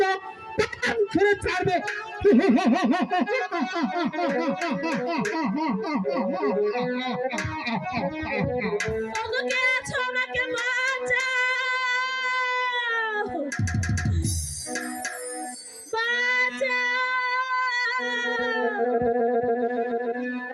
প্রাণ ছেড়ে ছাড়বে। ওগো কে আছো আমাকে বাঁচাও বাঁচাও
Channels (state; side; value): identical; both; correlation 1.00